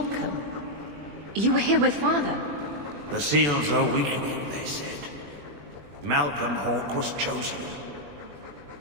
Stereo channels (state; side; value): late; left; 21 ms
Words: You were here with Father. The seals are weakening, they said. Malcolm Hawk was chosen.